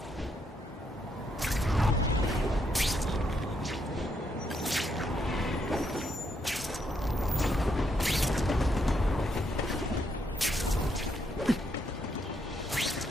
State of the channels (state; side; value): normal; both; correlation 0.77